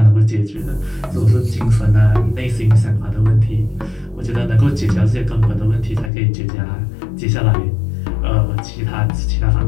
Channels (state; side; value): drops out; right; at 6.1 s